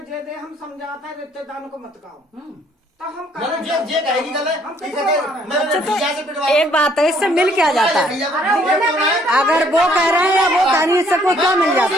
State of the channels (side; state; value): both; normal; correlation 0.64